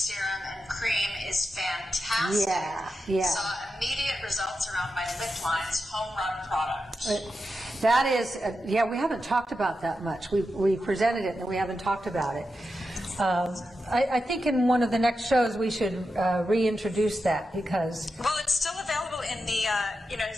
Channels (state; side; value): normal; both; correlation 0.89